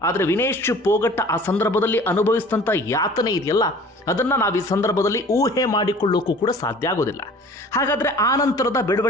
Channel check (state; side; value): normal; both; correlation 0.47